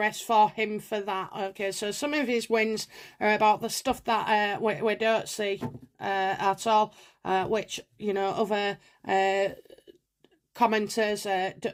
for him for that, okay? So some of his wins are about the stuff that we don't see at all, which, other commenters,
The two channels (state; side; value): identical; both; correlation 1.00